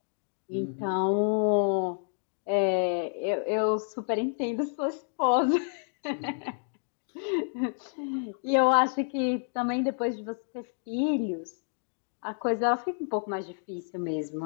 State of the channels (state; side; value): silent; right; digital silence